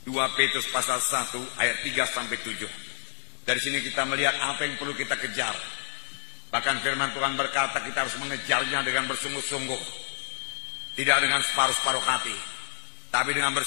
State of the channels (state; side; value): silent; right; digital silence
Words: 2 Petrus pasal 1 ayat 3 sampai 7. Dari sini kita melihat apa yang perlu kita kejar. Bahkan firman Tuhan berkata kita harus mengejarnya dengan bersungguh-sungguh. Tidak dengan separuh-separuh hati, tapi dengan